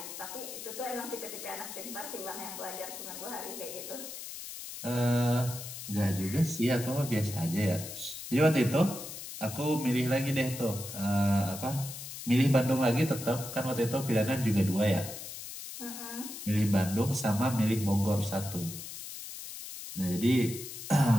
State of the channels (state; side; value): noise; left; hiss, 10 dB below the sound